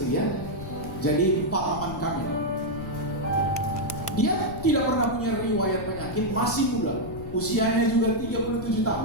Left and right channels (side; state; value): left; noise; rumble, 11 dB below the sound